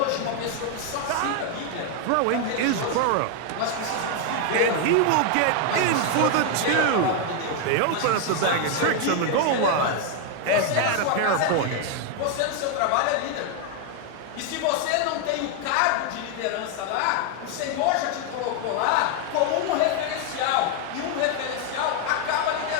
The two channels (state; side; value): different; both; correlation 0.01